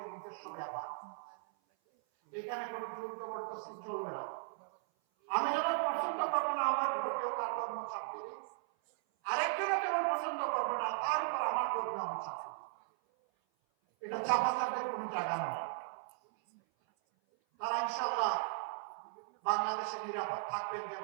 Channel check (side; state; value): left; silent; 53 dB below the other